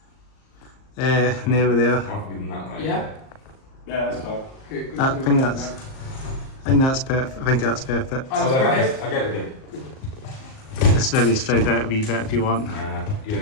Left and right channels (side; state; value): right; late; 38 ms